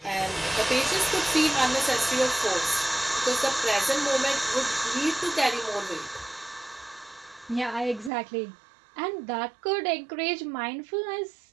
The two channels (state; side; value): drops out; left; at 8.1 s